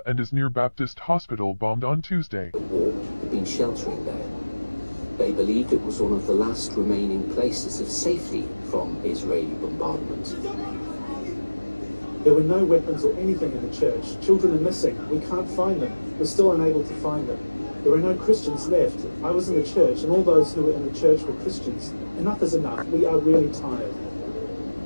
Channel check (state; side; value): inverted; both; correlation -1.00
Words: and is near Baptist Hospital bombed on Tuesday. The war had been sheltering there. They believed it was one of the last remaining places of safety from Israeli bombardment. There were no weapons or anything in the church. Children are missing. We can't find them. We're still unable to find them. There are no Christians left. I was in the church, and all those who were in the church were Christians. Enough is enough. We are really tired.